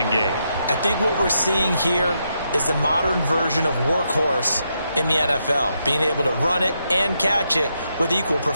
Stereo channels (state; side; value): inverted; both; correlation -0.81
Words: game. I think what we're seeing here is the modern version of workhorse in the NFL, being able to run it and catch it with equal